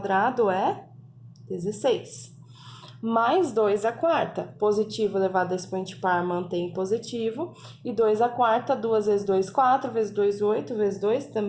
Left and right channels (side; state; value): both; identical; correlation 1.00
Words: é 16. Mais 2 à quarta, positivo elevado a expoente par mantém positivo. E 2 à quarta, 2 vezes 2, 4, vezes 2, 8, vezes 2